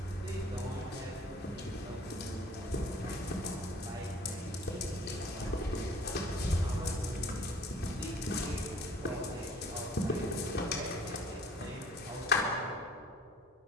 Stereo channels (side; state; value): both; normal; correlation 0.53